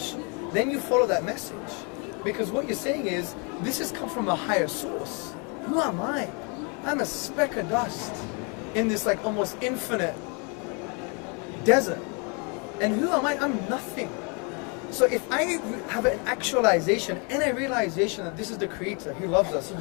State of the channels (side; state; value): right; quieter; 34.2 dB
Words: then you follow that message. Because what you're saying is, this has come from a higher source. Who am I? I'm a speck of dust in this like almost infinite desert. And who am I? I'm nothing. So if I have an actualization and a realization that this is the Creator, He loves us, He